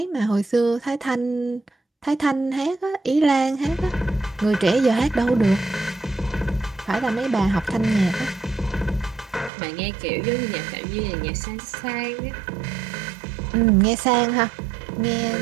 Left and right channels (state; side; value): drops out; left; at 9.5 s